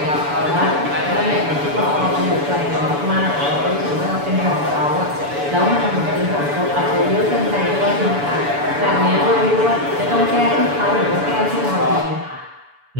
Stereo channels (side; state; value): left; late; 7.0 ms